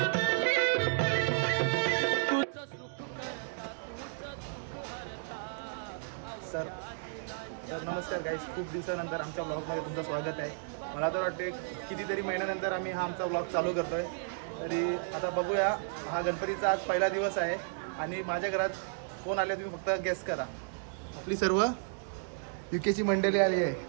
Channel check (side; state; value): left; silent; digital silence